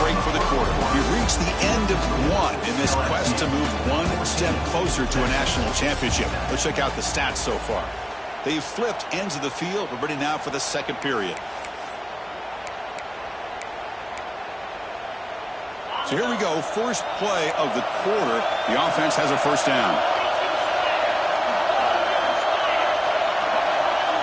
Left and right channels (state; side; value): identical; both; correlation 1.00